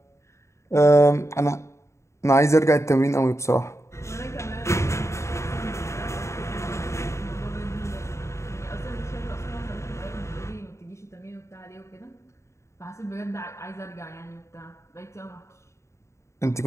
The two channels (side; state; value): right; late; 0.14 ms